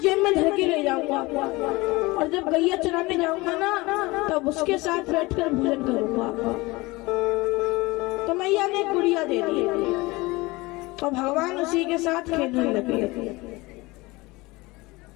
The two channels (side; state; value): right; quieter; 22.3 dB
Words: में धर के ले जाऊंगा, और जब गैया चराने जाऊंगा ना तब उसके साथ बैठकर भोजन करूंगा। तो मैया ने गुड़िया दे दी और भगवान उसी के साथ खेलने लगे।